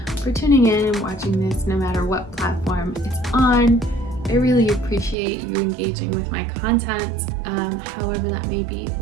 for tuning in and watching this, no matter what platform it's on. I really appreciate you engaging with my content, however that may be,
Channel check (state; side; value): drops out; left; at 5.2 s